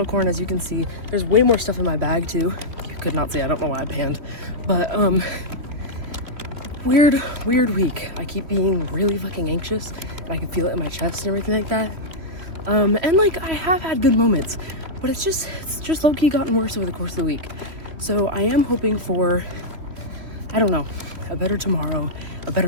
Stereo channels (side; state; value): left; late; 3.1 ms